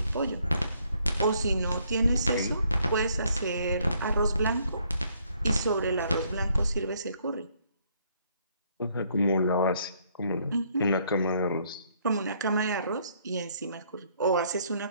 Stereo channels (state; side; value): inverted; both; correlation -0.68